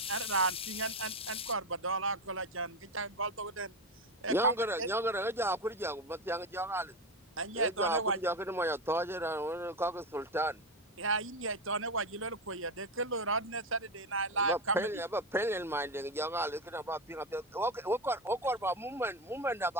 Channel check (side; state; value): both; normal; correlation 0.14